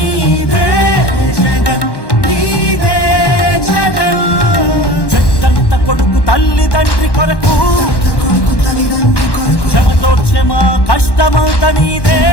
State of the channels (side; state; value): right; late; 1.1 ms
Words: జగన్ నీదే జగన్ చెట్టంత కొడుకు తల్లి తండ్రి కొరకు క్షమతోక్షమ కష్టమంత నీదే